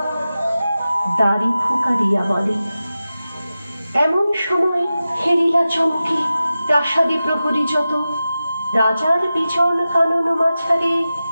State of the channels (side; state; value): both; inverted; correlation -0.94